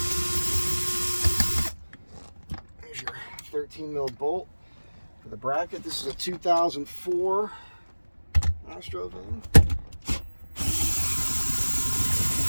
There's your 13 mil bolt for the bracket. This is a 2004 Astro van.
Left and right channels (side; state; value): both; inverted; correlation -1.00